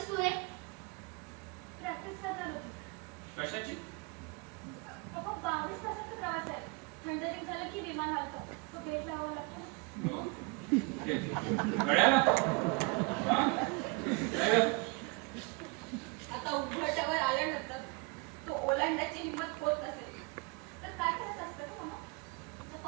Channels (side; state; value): left; quieter; 29.8 dB